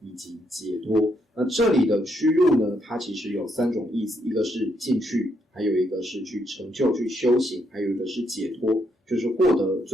以及解脱。那这里的驱入呢，它其实有三种意思，一个是进去，还有一个是去成就去修行，还有一个是解脱，就是获得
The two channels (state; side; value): normal; both; correlation 0.76